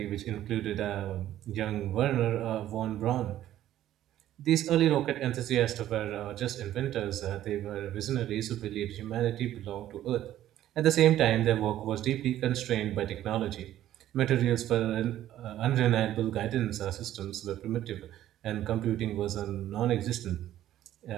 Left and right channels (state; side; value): quieter; left; 12.7 dB